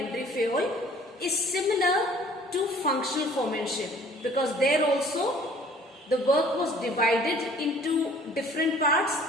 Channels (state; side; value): normal; both; correlation 0.53